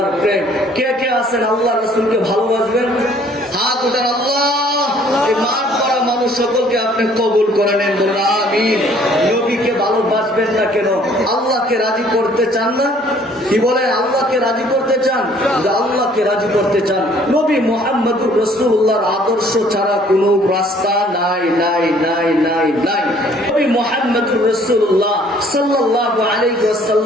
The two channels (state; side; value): normal; both; correlation 0.58